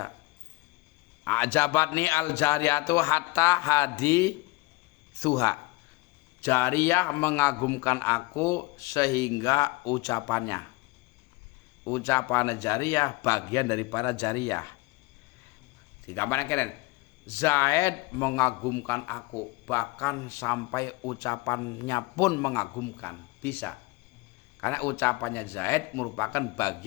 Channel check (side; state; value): right; quieter; 23.2 dB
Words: Ajabatni al-jariyatu hatta hadi suha. Jariyah mengagumkan aku sehingga ucapannya. Ucapan jariyah bagian daripada jariyah. Digambarkan keren. Zaid mengagumkan aku, bahkan sampai ucapannya pun mengagumkan. Bisa. Karena ucapannya Zaid merupakan